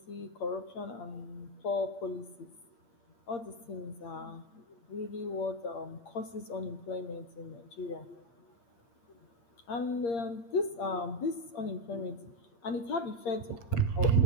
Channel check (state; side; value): late; right; 8.6 ms